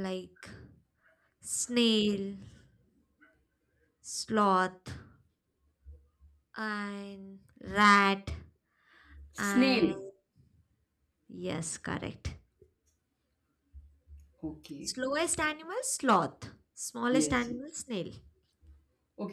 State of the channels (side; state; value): both; identical; correlation 1.00